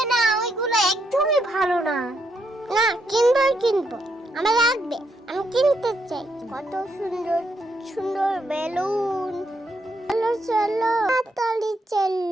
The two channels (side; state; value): both; normal; correlation 0.78